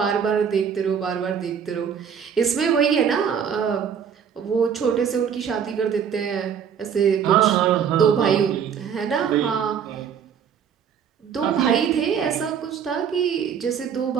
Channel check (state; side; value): quieter; left; 7.6 dB